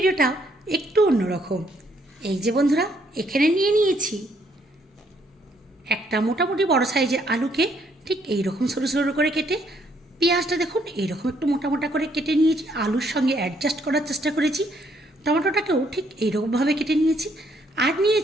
একটু অন্যরকম। এই যে বন্ধুরা, এখানে নিয়ে নিয়েছি একটা মোটামুটি বড় সাইজের আলুকে ঠিক এইরকম সরু সরু করে কেটে, পেঁয়াজটা দেখুন এইরকম একটু মোটা মোটা করে কেটে নিয়েছি, আলুর সঙ্গে অ্যাডজাস্ট করার চেষ্টা করেছি। টমেটোটাকেও ঠিক এইরকমভাবে কেটে নিয়েছি। আর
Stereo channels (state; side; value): normal; both; correlation 0.69